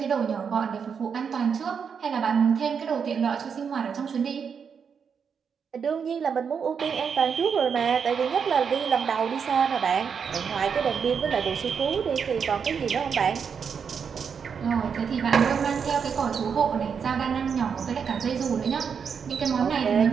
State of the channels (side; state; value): left; quieter; 6.6 dB